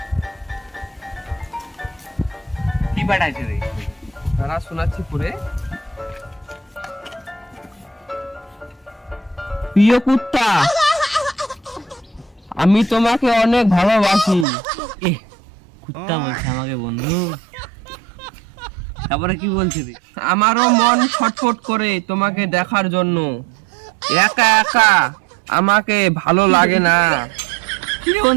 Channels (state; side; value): drops out; left; at 14.5 s